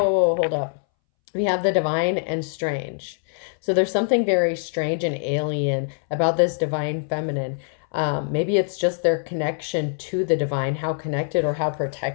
whoa, hold up. We have the divine and strange. So there's something very strange and alien about this Divine Feminine. Maybe it's just their connection to the divine, how connected or how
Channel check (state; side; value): silent; right; 62 dB below the other